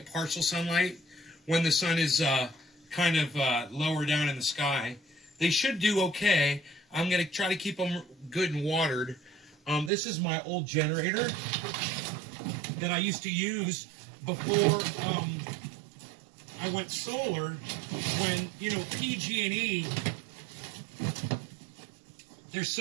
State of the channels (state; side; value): drops out; left; at 9.9 s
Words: partial sunlight when the sun is kind of lower down in the sky. They should do okay. I'm going to try to keep them good and watered. This is my old generator that I used to use before I went solar. When, you know, PG&E, they're